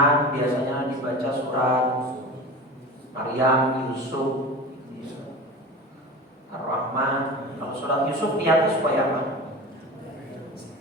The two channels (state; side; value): normal; both; correlation 0.32